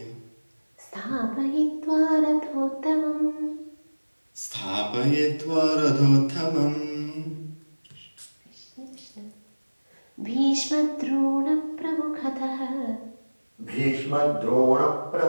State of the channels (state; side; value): inverted; both; correlation -1.00